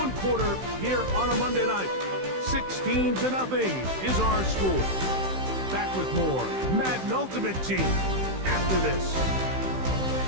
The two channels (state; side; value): late; left; 16 ms